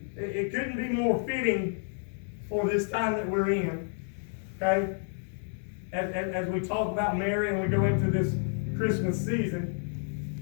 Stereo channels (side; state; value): right; silent; 57 dB below the other